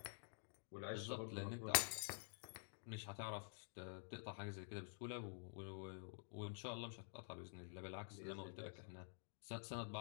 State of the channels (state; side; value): silent; right; digital silence